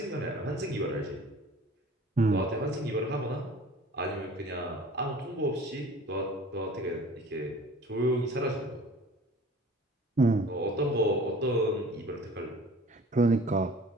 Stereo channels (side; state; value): both; normal; correlation 0.46